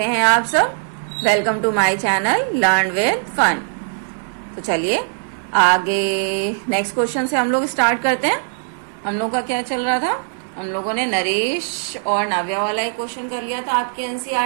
हैं आप सब। Welcome to my channel learn with fun. तो चलिए आगे नेक्स्ट क्वेश्चन से हम लोग स्टार्ट करते हैं। हम लोग का क्या चल रहा था, हम लोगों ने नरेश और नाव्या वाला एक क्वेश्चन कर लिया था आपके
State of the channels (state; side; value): silent; left; digital silence